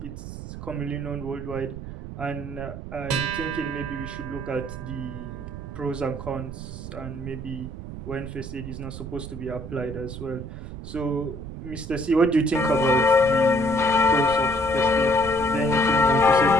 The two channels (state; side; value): noise; right; rumble, 10 dB below the sound